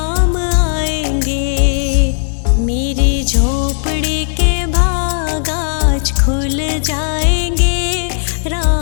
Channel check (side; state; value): right; silent; digital silence